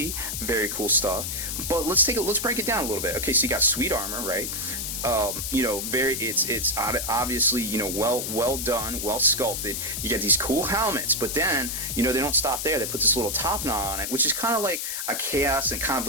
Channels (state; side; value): noise; left; hiss, 3 dB below the sound